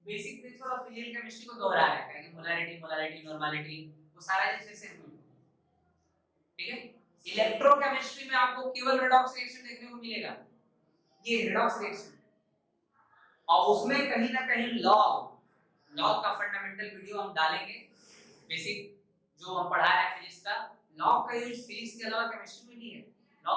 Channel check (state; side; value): identical; both; correlation 1.00